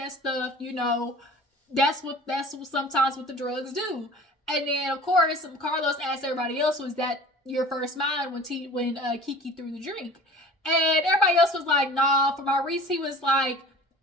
stuff, you know, that's what sometimes what the drugs do. And then, of course, Carlos asked everybody else, was that your first mind when KeKe threw the drink? And everybody else was like, nah. For Maurice, he was like,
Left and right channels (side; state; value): both; normal; correlation 0.42